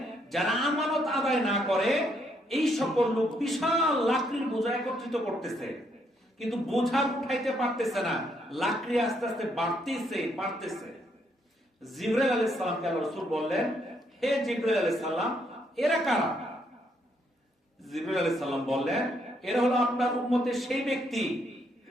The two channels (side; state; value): both; normal; correlation 0.73